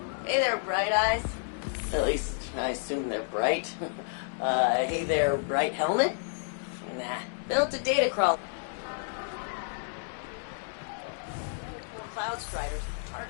Hey there, Bright Eyes. At least, I assume they're bright. Hey there, Bright Helmet? Nah, built a data crawl. Cloud Striders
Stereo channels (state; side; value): silent; right; digital silence